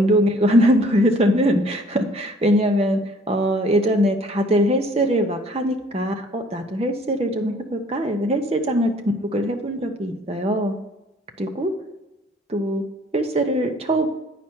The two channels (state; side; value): normal; both; correlation 0.56